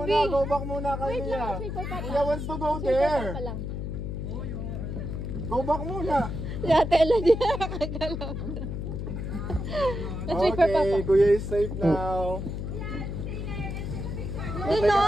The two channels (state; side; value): noise; left; hum, 5 dB below the sound